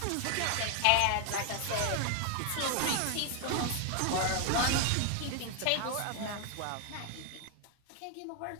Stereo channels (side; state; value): both; different; correlation 0.00